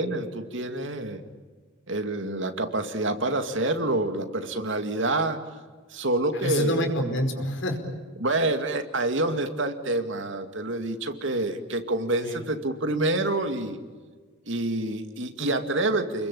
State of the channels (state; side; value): normal; both; correlation 0.04